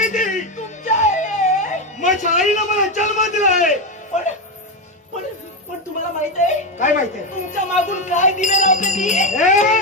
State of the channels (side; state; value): both; normal; correlation 0.11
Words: ती. तुमच्या आहे. माझ्या आईला मला जन्म दिलाय. पण पण पण तुम्हाला माहित आहे काय माहितीये? तुमच्या मागून काय दिवे लावते ती? ए